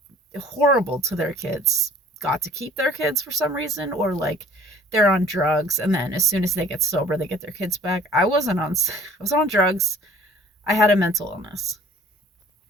horrible to their kids got to keep their kids for some reason, or like they're on drugs and then as soon as they get sober they get their kids back. I was on drugs. I had a mental illness.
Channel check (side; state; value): both; normal; correlation 0.51